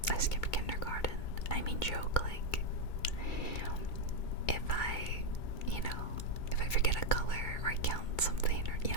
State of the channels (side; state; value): right; late; 2.2 ms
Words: I skipped kindergarten. I mean, joke, like, if I forget a color or I count something, or, you